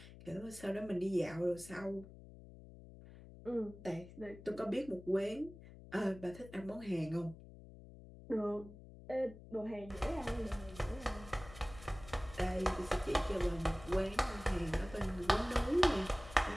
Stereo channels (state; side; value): noise; left; hum, 17 dB below the sound